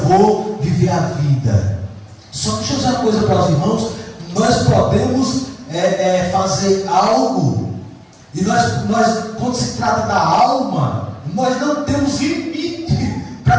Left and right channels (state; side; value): identical; both; correlation 1.00